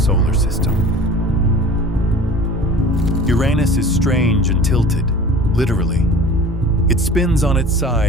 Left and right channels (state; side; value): normal; both; correlation 0.42